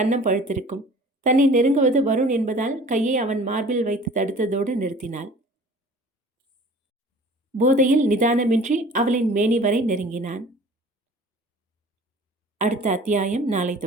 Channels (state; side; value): normal; both; correlation 0.46